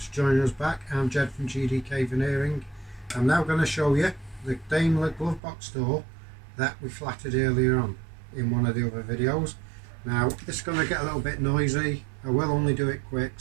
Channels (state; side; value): drops out; left; at 5.4 s